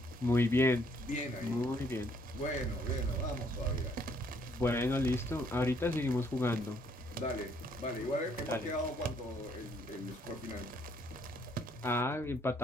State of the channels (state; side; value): normal; both; correlation 0.67